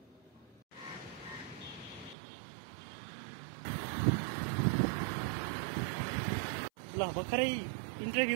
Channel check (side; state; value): left; drops out; at 2.1 s